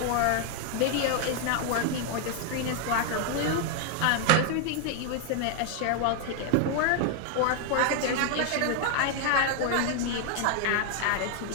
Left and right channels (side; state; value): both; different; correlation 0.00